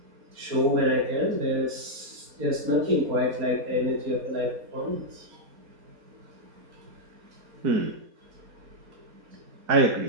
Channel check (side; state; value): left; late; 4.2 ms